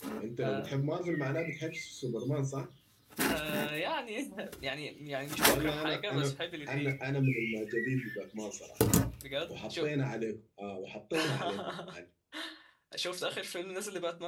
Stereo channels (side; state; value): both; identical; correlation 1.00